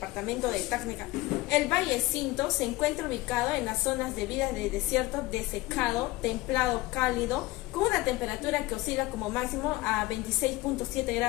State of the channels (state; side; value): quieter; right; 19.4 dB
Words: de Tacna, el Valle Cinto se encuentra ubicado en las zonas de vida de desierto desecado, templado cálido, con una temperatura que oscila como máximo a 26.7